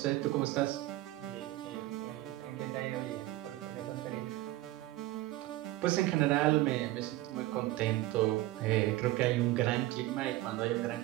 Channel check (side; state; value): left; quieter; 17.0 dB